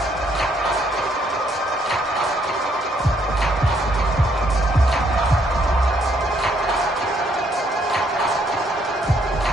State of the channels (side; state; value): both; normal; correlation 0.70